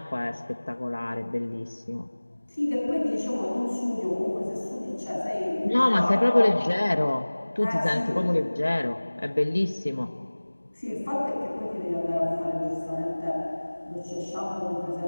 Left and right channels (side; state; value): both; inverted; correlation -1.00